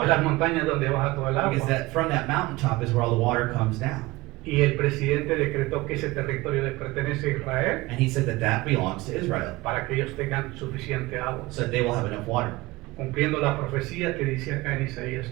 las water. montañas donde baja todo el Because agua. that from that mountaintop is where all the water comes down. Y el presidente decretó que ese territorio le pertenece a Israel And he said that that belongs to Israel, para que ellos tengan suficiente agua, so that they will have enough water, cumpliendo la profecía que dice acá en Isaías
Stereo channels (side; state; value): left; quieter; 20.6 dB